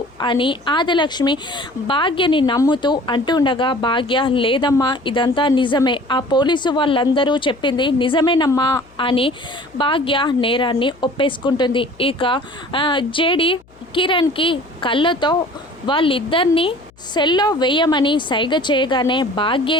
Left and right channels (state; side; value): noise; left; hum, 29 dB below the sound